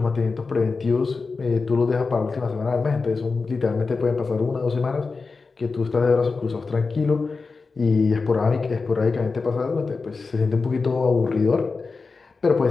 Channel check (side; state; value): right; quieter; 4.3 dB